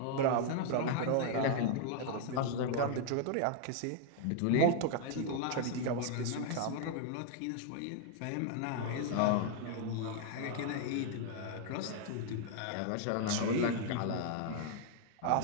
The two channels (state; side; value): different; both; correlation 0.00